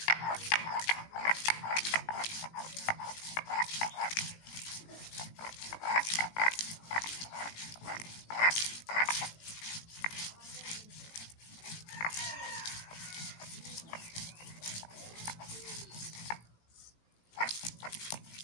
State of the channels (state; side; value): late; right; 18 ms